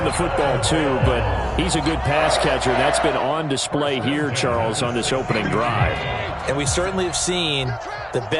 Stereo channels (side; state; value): both; identical; correlation 1.00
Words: the football too, but he's a good pass catcher. That's been on display here, Charles, on this opening drive. And we certainly have seen the